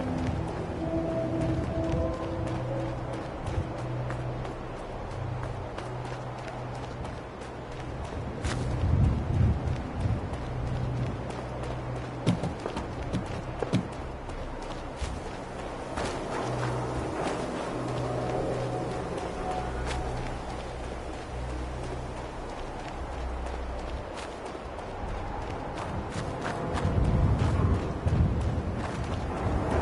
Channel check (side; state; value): both; identical; correlation 1.00